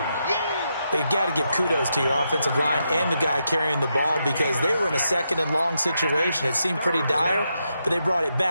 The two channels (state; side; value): inverted; both; correlation -0.83